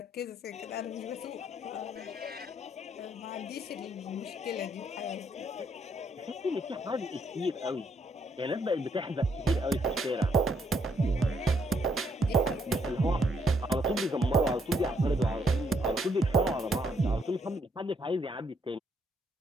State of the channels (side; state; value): both; normal; correlation 0.72